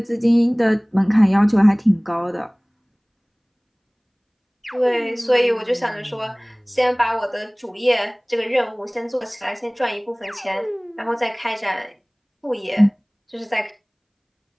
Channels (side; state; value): both; identical; correlation 1.00